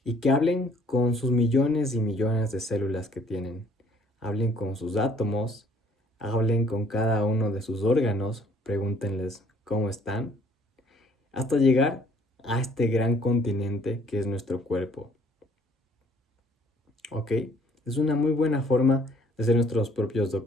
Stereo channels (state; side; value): normal; both; correlation 0.61